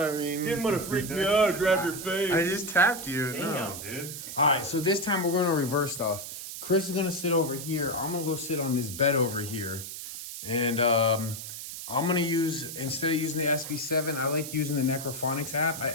I mean, Didn't want to freak me out, grab your face. I just tapped you. Damn, No. dude. All right, so this time we're going to reverse stuff. Chris is going to sit over here. I'm going to go sit on this bed over here. And I'm going to use, instead of using the SB7, I like using the Necrophonics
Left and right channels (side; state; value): right; noise; hiss, 9 dB below the sound